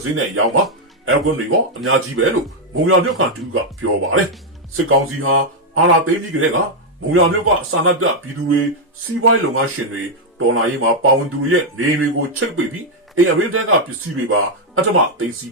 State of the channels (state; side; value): normal; both; correlation -0.01